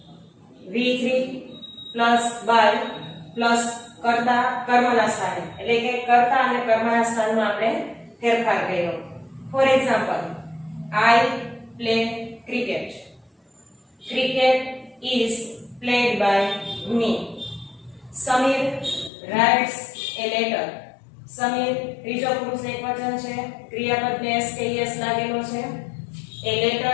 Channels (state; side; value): drops out; right; at 19.1 s